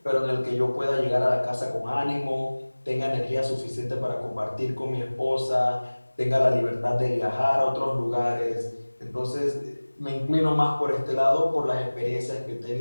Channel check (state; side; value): inverted; both; correlation -1.00